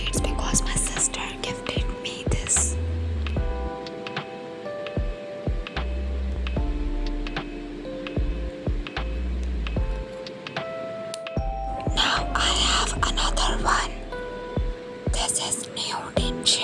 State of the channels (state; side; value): identical; both; correlation 1.00